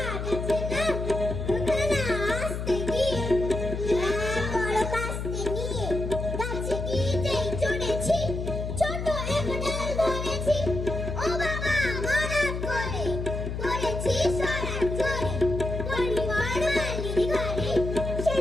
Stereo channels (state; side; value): noise; left; hum, 4 dB below the sound